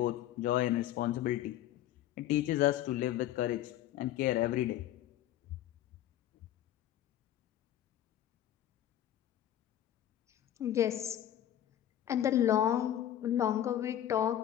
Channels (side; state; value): right; quieter; 11.9 dB